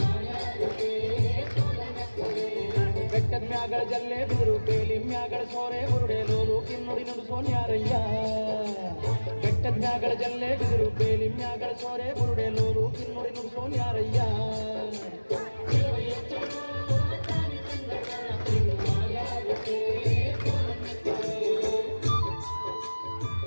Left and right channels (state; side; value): inverted; both; correlation -1.00